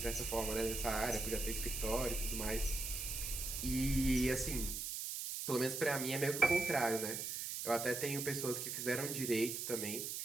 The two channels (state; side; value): noise; right; hiss, 4 dB below the sound